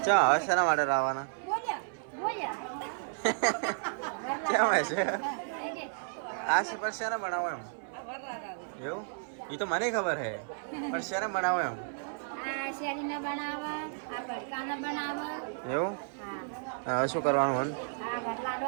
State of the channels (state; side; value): silent; left; 56 dB below the other